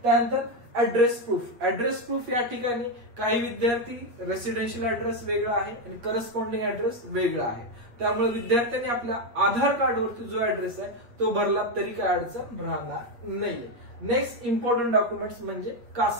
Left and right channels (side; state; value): left; late; 8.4 ms